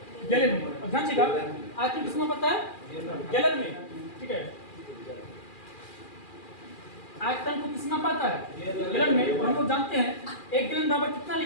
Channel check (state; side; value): late; right; 2.4 ms